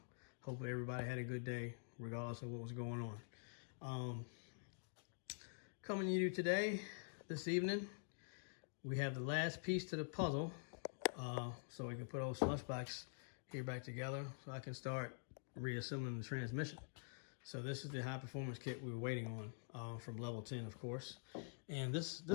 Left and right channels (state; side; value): silent; right; digital silence